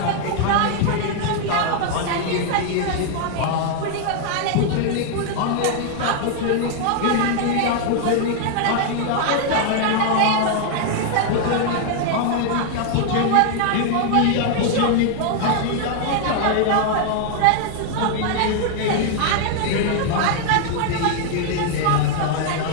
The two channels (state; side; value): different; both; correlation 0.00